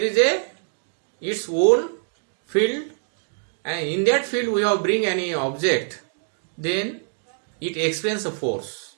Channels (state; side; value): silent; left; digital silence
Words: is its own field, and in that field we have bring any object, then it experiences a force,